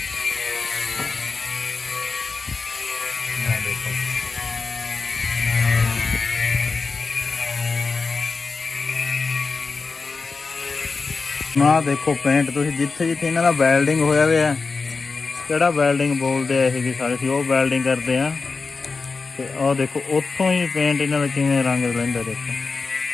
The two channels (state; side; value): quieter; right; 4.4 dB